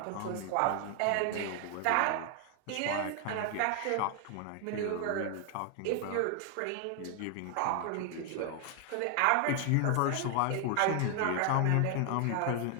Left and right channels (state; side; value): different; both; correlation 0.00